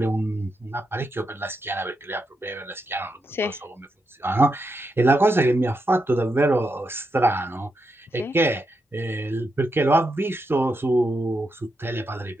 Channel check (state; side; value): normal; both; correlation 0.84